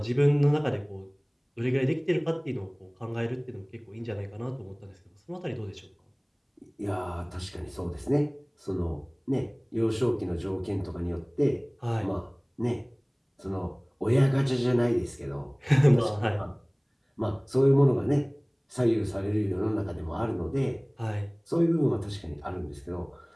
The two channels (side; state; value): both; identical; correlation 1.00